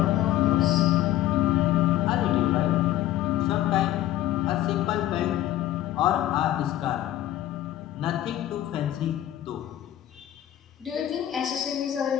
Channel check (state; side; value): quieter; right; 13.3 dB